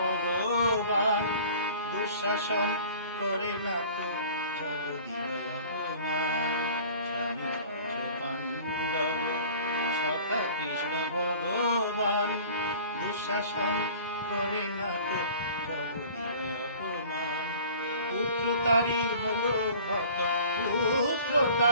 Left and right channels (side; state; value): both; inverted; correlation -0.46